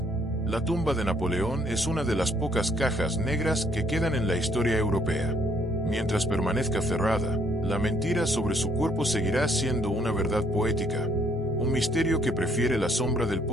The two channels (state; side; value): normal; both; correlation 0.66